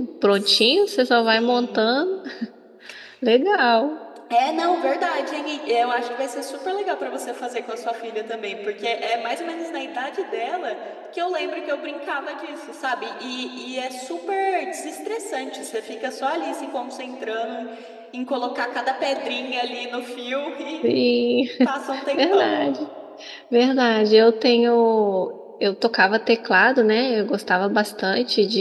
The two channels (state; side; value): identical; both; correlation 1.00